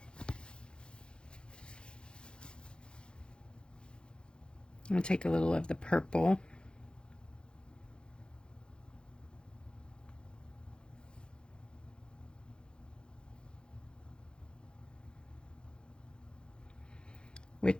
I'm going to take a little of the purple.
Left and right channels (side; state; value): right; late; 0.051 ms